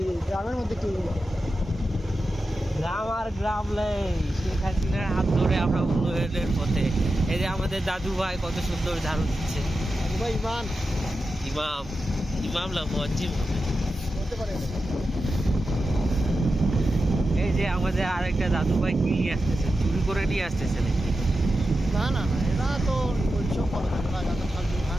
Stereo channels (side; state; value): both; normal; correlation 0.91